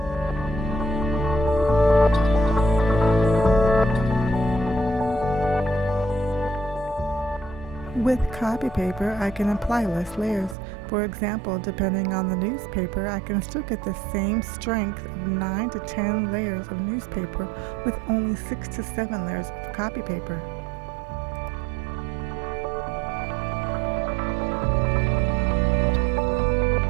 With copy paper, I can apply less layers. For example, depending on the newspaper, I can still get the same strength of 9 to 10 layers of newspaper with only 6 to 7 layers of copy paper.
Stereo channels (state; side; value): drops out; left; at 10.6 s